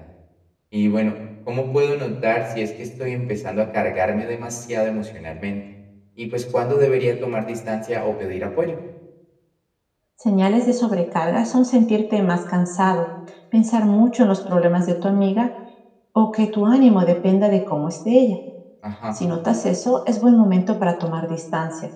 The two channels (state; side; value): identical; both; correlation 1.00